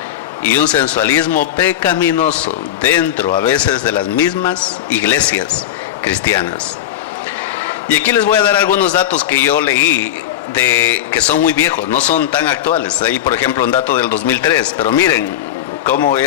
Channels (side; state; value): right; quieter; 11.5 dB